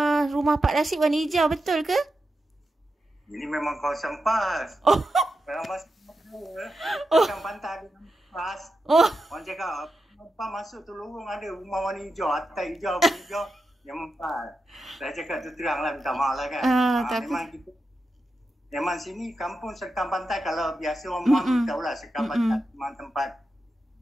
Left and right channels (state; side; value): normal; both; correlation 0.88